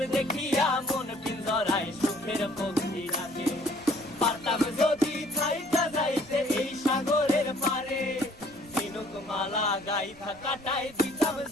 দেখিয়া মন পিঞ্জরায় সুখের পক্ষী রাখে। পারতাম যদি থাইকা যাইতে এই সাগরের পারে, ঝিনুক মালা গাইথা কাটাই দিতাম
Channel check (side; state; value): right; noise; rumble, 24 dB below the sound